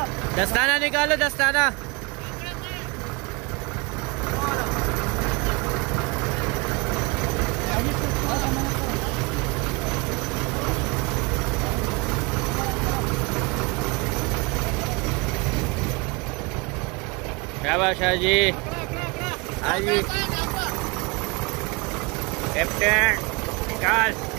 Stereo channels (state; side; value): quieter; left; 27.8 dB